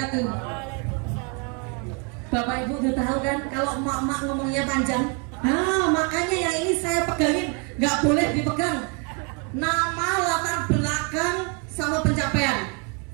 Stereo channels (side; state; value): left; quieter; 35.2 dB